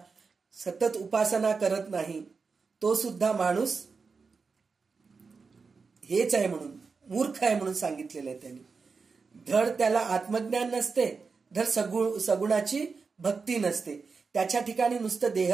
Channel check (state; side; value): quieter; left; 4.8 dB